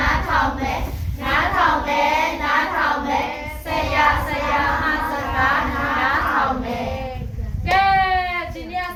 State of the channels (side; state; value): both; identical; correlation 1.00